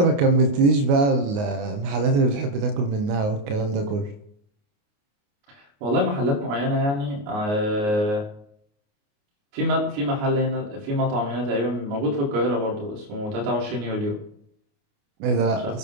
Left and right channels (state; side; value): late; left; 29 ms